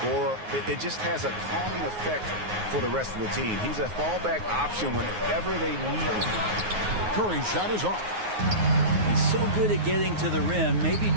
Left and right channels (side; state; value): left; late; 9.5 ms